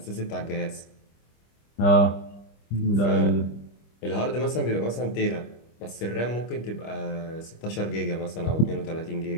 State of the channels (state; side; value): late; right; 25 ms